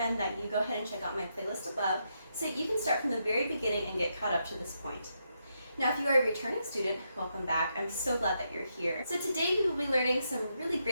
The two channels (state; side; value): inverted; both; correlation -0.81